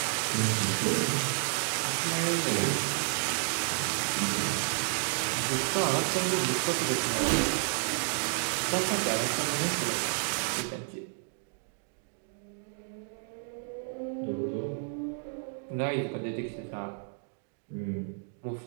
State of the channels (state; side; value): silent; left; 57 dB below the other